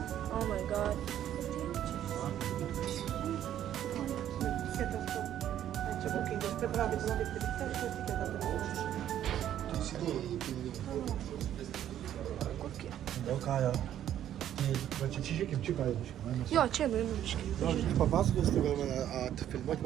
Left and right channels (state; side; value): quieter; left; 11.1 dB